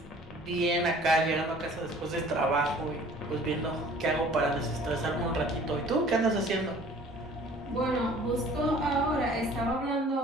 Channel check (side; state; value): both; normal; correlation 0.51